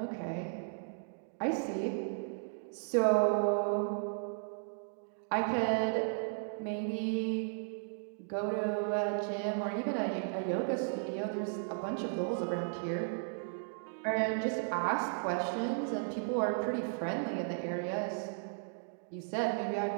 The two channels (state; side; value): silent; left; digital silence